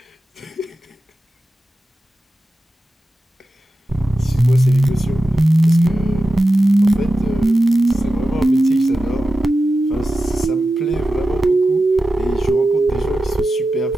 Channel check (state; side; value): normal; both; correlation 0.92